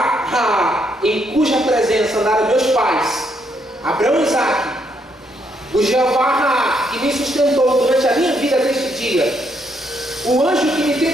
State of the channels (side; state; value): both; normal; correlation 0.74